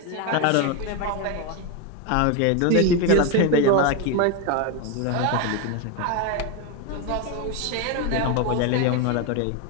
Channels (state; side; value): different; both; correlation 0.02